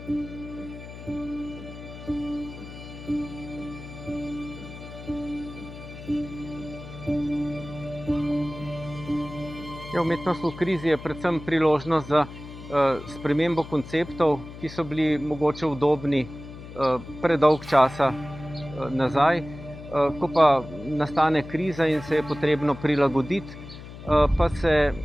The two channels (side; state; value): left; noise; hum, 14 dB below the sound